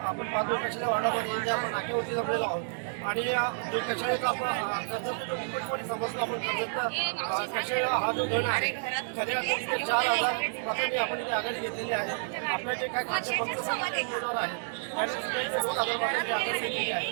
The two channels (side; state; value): left; silent; digital silence